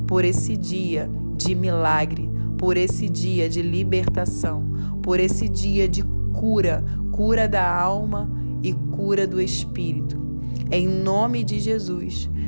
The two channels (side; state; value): both; inverted; correlation -1.00